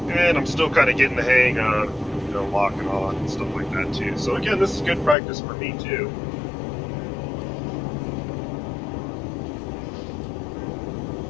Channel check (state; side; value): drops out; right; at 5.2 s